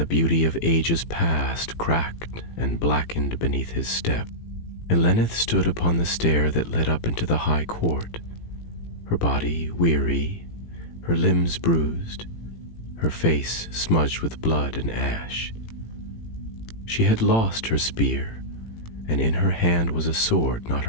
beauty of ages past cracked and blackened beneath his step. Eleneth stood upon the stair that led up into the high court, her body weary, her limbs bruised, her face smudged with blood and ash. She had lost her spear, and in her hand was a sword not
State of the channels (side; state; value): right; late; 18 ms